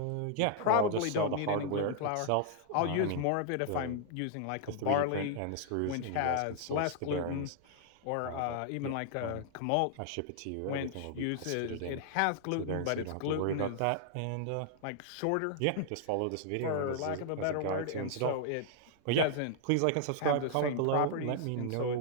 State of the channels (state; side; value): different; both; correlation -0.01